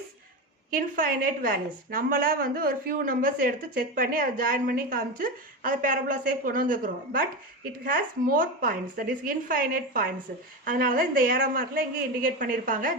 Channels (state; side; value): normal; both; correlation 0.19